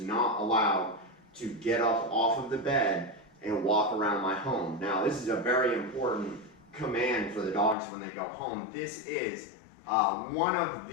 allowed to get up off of the bed and walk around my home. Now, this is a very important command for the dogs when they go home. This is one of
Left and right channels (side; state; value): right; drops out; at 7.8 s